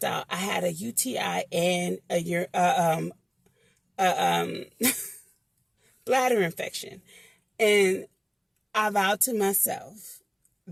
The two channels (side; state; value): both; identical; correlation 1.00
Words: out I had a UTI and a bladder infection. And I vowed to myself